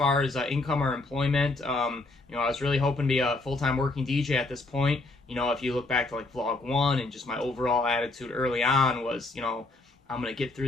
as income or employment. I was really hoping to be a full-time working DJ at this point. If you look back to like vlog 1 and just my overall attitude early on was, I'm going to get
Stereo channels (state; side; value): quieter; right; 3.1 dB